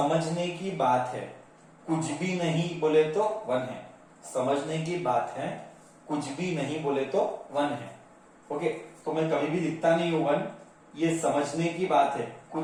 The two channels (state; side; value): identical; both; correlation 1.00